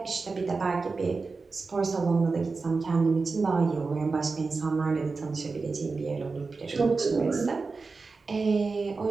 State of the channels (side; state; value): left; quieter; 4.2 dB